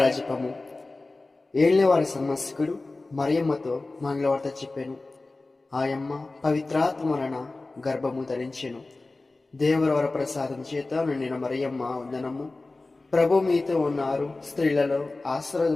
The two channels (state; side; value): quieter; right; 3.2 dB